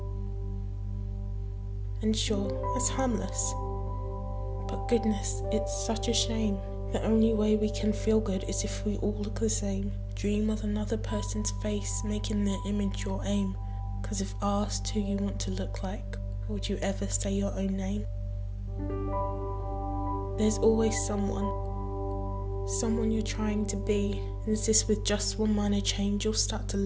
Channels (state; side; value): identical; both; correlation 1.00